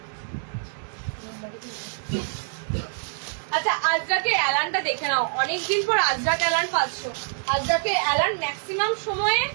আচ্ছা, আজরাকে অ্যালানটা দেখে নাও, অনেকদিন পর আজরাক অ্যালান পাচ্ছ। আজরাকে অ্যালান ম্যাক্সিমাম সময়ে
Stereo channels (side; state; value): left; silent; digital silence